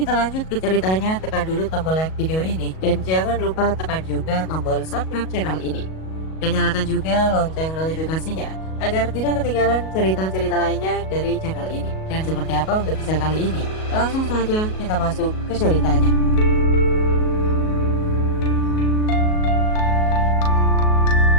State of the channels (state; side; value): late; right; 37 ms